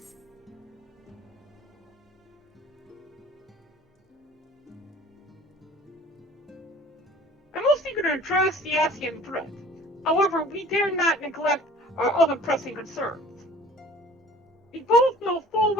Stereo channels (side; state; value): both; normal; correlation 0.48